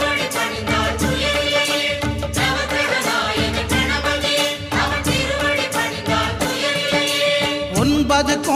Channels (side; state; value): both; identical; correlation 1.00